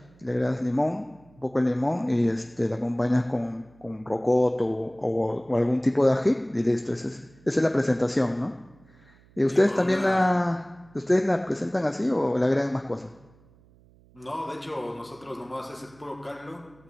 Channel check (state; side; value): noise; right; hum, 28 dB below the sound